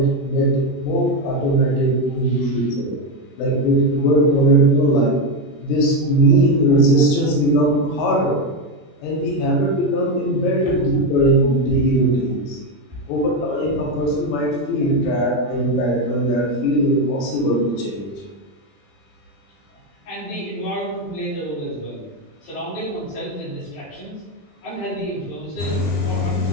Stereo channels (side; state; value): right; late; 21 ms